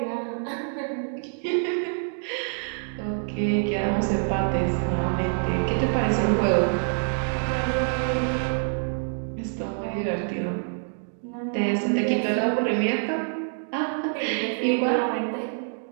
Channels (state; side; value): silent; left; digital silence